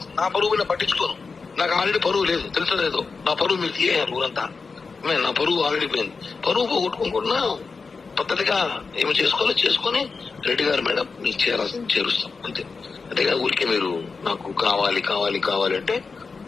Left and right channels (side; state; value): right; quieter; 4.6 dB